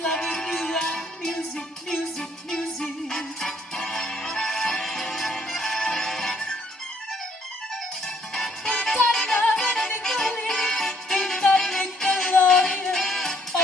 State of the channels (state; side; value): normal; both; correlation 0.66